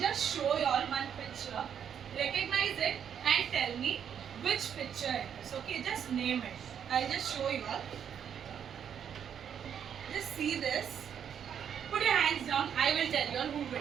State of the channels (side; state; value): left; quieter; 8.4 dB